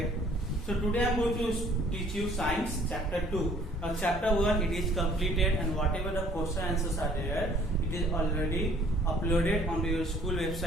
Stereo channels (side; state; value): both; normal; correlation 0.57